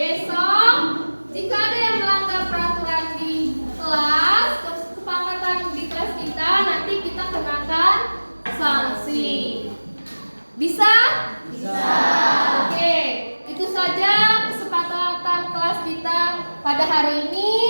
Jika ada yang melanggar peraturan di kelas, kesepakatan di kelas kita, nanti kita kenakan sanksi. Bisa? Bisa. Oke, itu saja kesepakatan kelas kita pada hari ini.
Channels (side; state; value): both; inverted; correlation -1.00